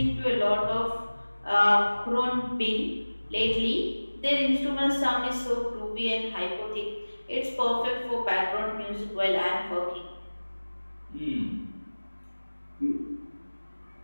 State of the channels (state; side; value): inverted; both; correlation -1.00